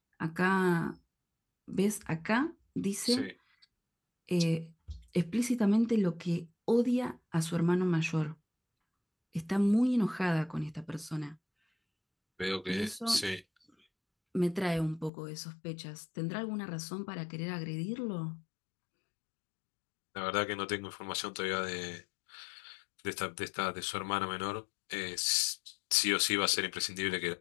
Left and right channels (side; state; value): right; drops out; at 15.1 s